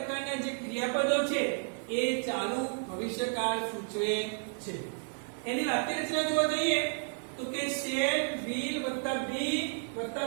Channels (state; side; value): silent; left; 56 dB below the other